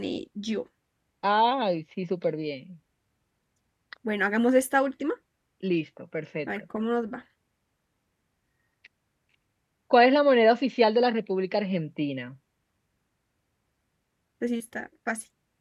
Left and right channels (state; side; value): identical; both; correlation 1.00